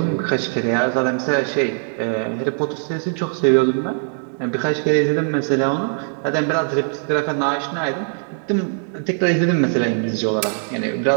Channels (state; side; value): silent; left; 65 dB below the other